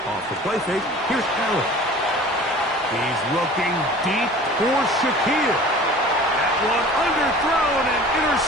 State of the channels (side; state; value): both; normal; correlation 0.43